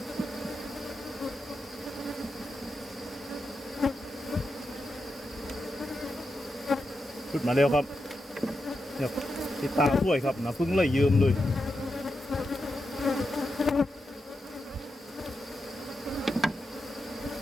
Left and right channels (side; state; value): both; normal; correlation 0.87